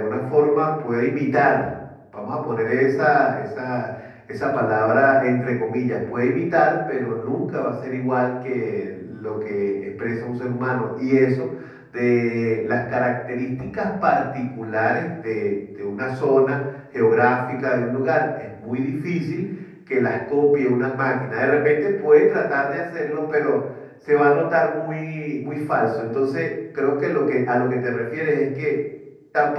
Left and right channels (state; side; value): identical; both; correlation 1.00